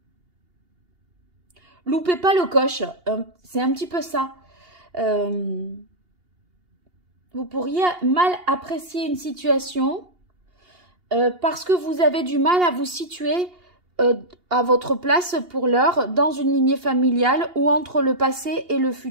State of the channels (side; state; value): left; late; 2.8 ms